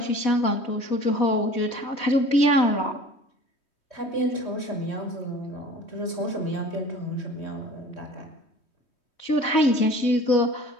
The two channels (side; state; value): right; late; 3.2 ms